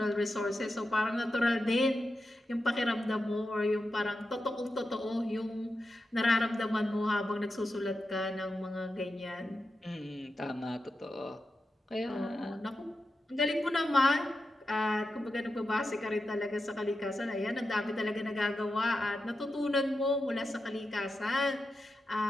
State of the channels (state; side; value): normal; both; correlation 0.90